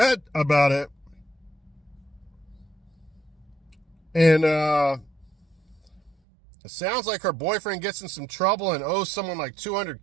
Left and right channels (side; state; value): left; drops out; at 6.2 s